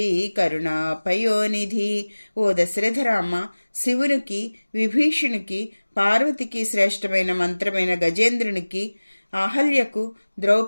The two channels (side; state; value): both; inverted; correlation -1.00